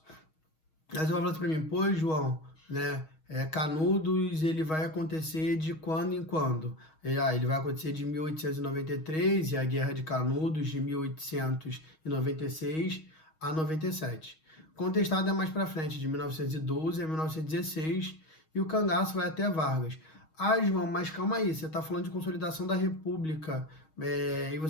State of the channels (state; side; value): late; right; 6.3 ms